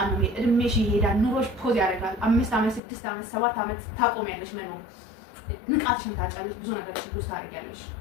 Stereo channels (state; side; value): drops out; right; at 2.8 s